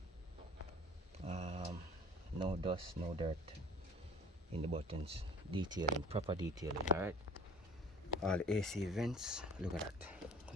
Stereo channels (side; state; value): both; normal; correlation 0.47